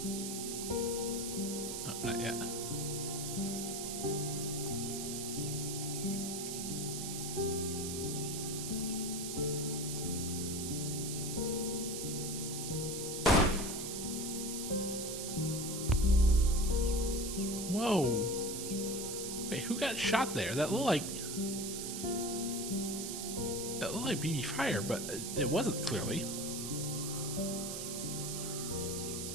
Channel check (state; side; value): noise; right; hiss, 5 dB below the sound